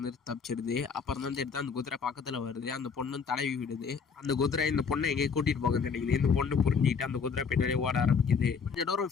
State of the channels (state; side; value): quieter; right; 5.9 dB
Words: தப்பிச்சிடுது. அப்புறம் தான் தெரியுது அந்த குதிரை பக்கத்தில் வருது. அந்த பொண்ணு தடவி விடுது. அந்த குதிரை இந்த பொண்ணை எங்கேயும் கூட்டிட்டு போகுதுன்னு நினைக்குது. இந்த பொண்ணு புரிஞ்சுக்கிட்டு அந்த குதிரை பின்னாடியே ஓட ஆரம்பிக்குது. கொஞ்சம்